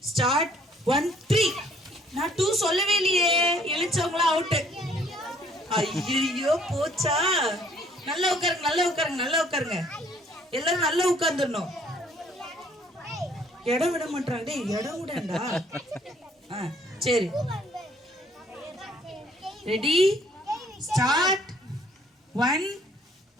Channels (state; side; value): normal; both; correlation 0.62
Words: start. 1 3. நான் 2 சொல்லவே இல்லையே. எழுச்சவங்களா அவுட். ஐயோ போச்சா? நல்லா உட்காருங்க, நல்லா உட்காருங்க, நல்லா உட்காருங்க. எல்லாரும் நல்லா உட்கார்ந்துடணும். இடம் விட மாட்டாங்க. டேய் இடம் விடண்டா. சரி ரெடி ஸ்டார்ட். 1